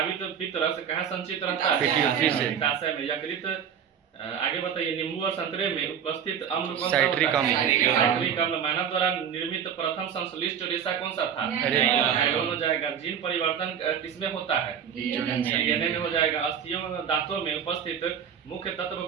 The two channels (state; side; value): quieter; left; 8.2 dB